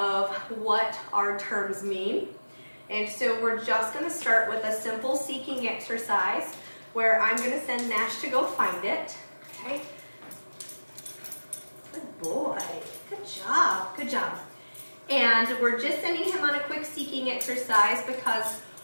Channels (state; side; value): inverted; both; correlation -1.00